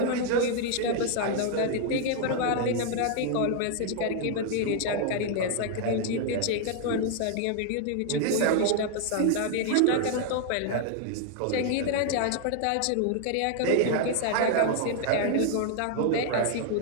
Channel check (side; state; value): both; different; correlation 0.00